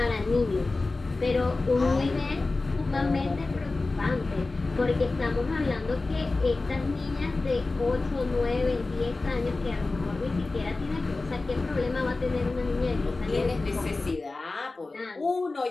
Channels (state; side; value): quieter; right; 3.4 dB